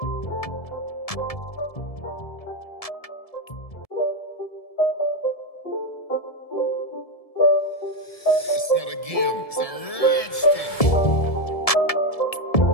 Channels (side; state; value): right; late; 1.7 ms